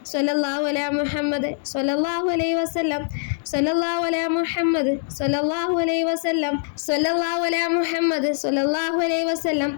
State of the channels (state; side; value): silent; right; digital silence